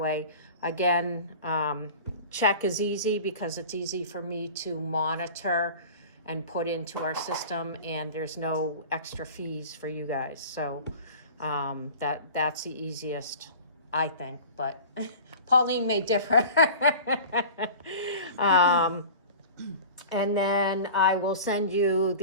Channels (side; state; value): both; inverted; correlation -0.39